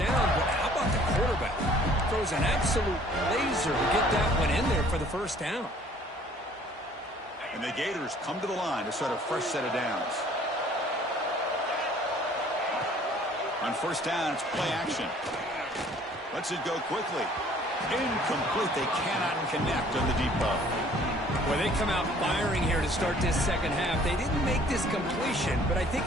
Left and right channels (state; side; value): normal; both; correlation 0.56